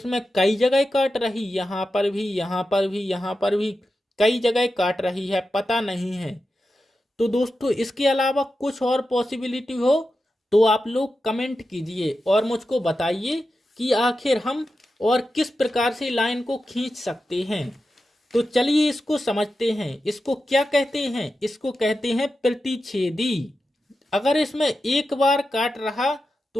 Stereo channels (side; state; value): both; normal; correlation 0.90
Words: कई जगह काट रही, यहाँ पर भी, यहाँ पर भी, यहाँ पर भी कई जगह काट रही है, पता नहीं है। तो दोस्तों इसके अलावा कुछ और पॉसिबिलिटी हो तो आप लोग कमेंट कीजिए और मुझको बताइए कि आखिर हम और किस प्रकार से लाइन को खींच सकते हैं। तो चलिए इसको समझते हैं। इसको क्या कहते हैं? इसको कहते हैं प्रतिच्छेदी। अगर इसमें एक बार काट रहा